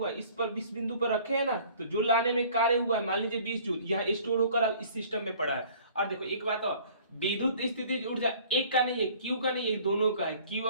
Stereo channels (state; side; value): inverted; both; correlation -0.52